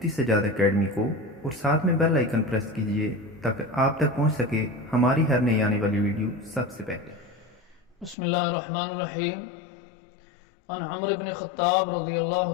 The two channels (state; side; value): drops out; right; at 8.2 s